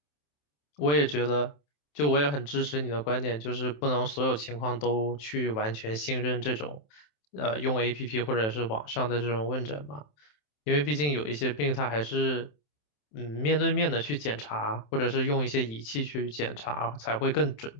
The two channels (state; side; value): late; right; 27 ms